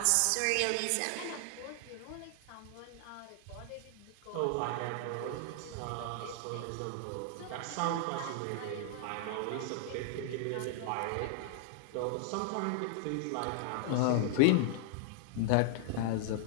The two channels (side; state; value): both; different; correlation 0.00